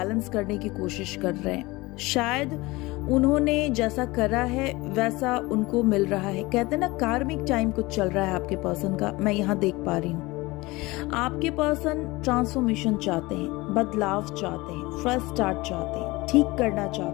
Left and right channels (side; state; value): right; quieter; 21.8 dB